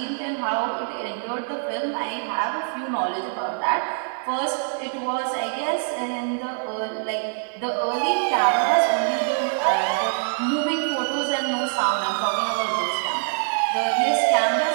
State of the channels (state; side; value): silent; left; digital silence